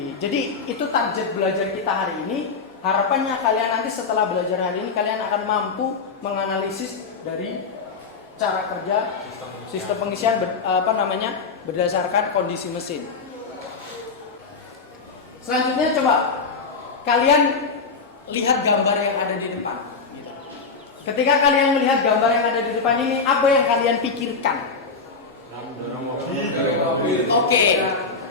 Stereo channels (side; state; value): right; quieter; 4.7 dB